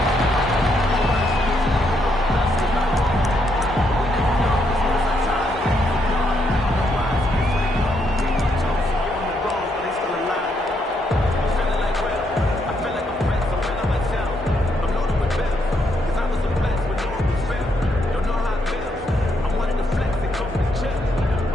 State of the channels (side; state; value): both; normal; correlation 0.76